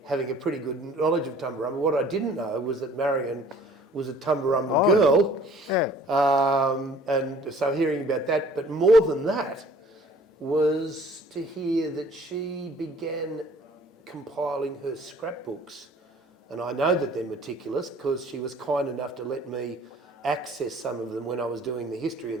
having a pretty good knowledge of Tumbarumba, what I didn't know was that Marion was a Tumbarumba girl. Yeah. And so hearing about that, but more than that was to hear that she began compiling her scrapbooks. And I know that they're meticulous because she was kind enough to let me access some of them when I was doing the history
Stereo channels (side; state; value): both; normal; correlation 0.53